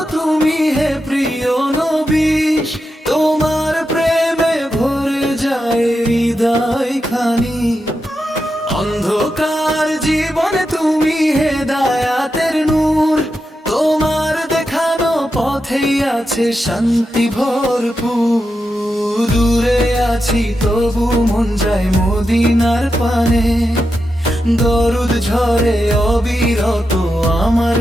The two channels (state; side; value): normal; both; correlation 0.88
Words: তুমি হে প্রিয় নবী, তোমার প্রেমে ভরে যায় হৃদয় খানি। অন্ধকার জীবনে তুমি হেদায়াতের নূর, তোমার দেখানো পথেই আছে শান্তি ভরপুর। দূরে আছি তবু মন যায় মদিনার পানে, দরুদ ঝরে অবিরত আমার